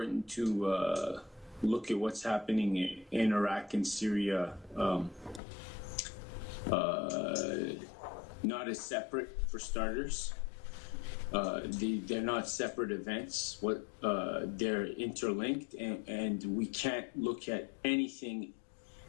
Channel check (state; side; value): drops out; right; at 5.4 s